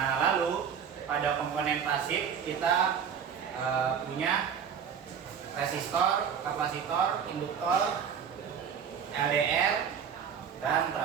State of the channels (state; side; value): quieter; left; 7.5 dB